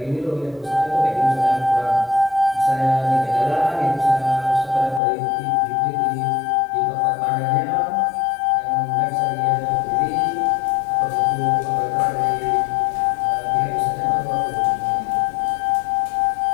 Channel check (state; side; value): drops out; right; at 5.0 s